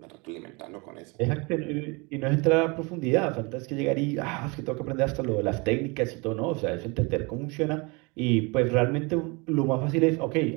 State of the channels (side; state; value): left; quieter; 28.6 dB